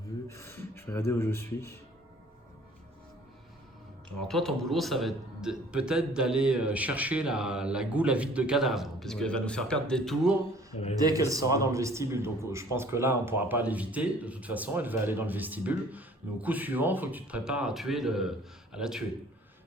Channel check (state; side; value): normal; both; correlation 0.53